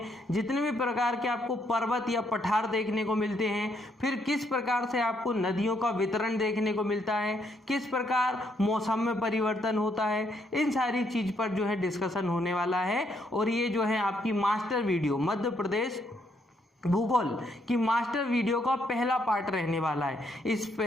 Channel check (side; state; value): both; normal; correlation 0.73